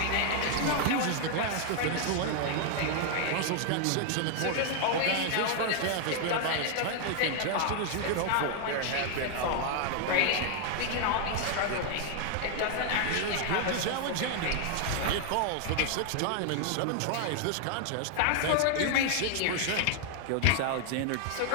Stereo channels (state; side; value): different; both; correlation 0.00